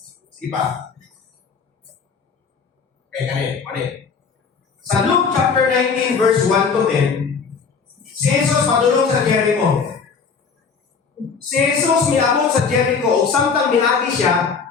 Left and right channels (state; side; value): quieter; right; 5.5 dB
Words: Sige pa. Okay, kani. Sa Luke chapter 19 verse 1 to 10, si Jesus padulong sa Jericho. Si Jesus miabot sa Jericho ug samtang miagi siya,